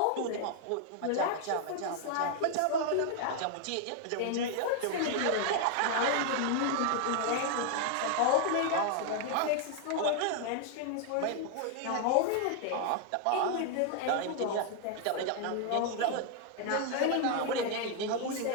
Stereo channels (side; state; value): both; different; correlation 0.00